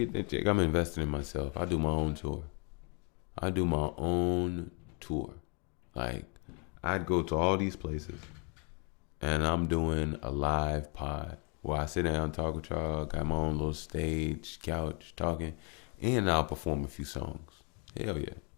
that check, I'm investing in myself. I do my own tour. Like, I'd go to all these places, and I'm doing a live pod where I sit down, talk with y'all, got my own little stage, couch, talking, and I'll perform a few songs. Hell yeah.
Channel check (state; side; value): quieter; right; 35.5 dB